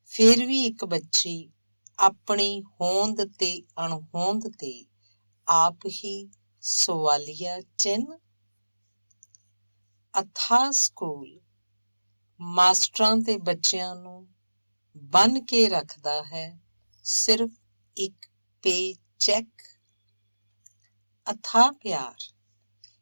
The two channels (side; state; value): both; inverted; correlation -1.00